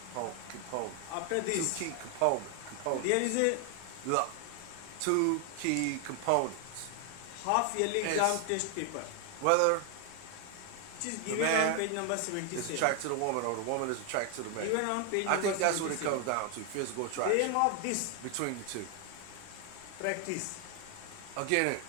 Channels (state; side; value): different; both; correlation 0.01